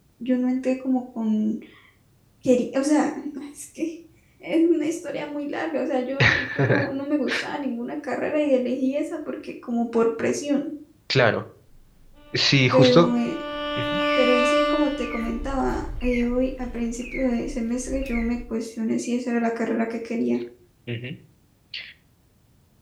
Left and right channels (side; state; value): both; identical; correlation 1.00